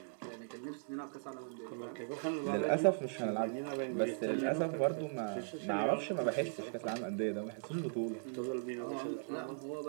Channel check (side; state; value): left; silent; digital silence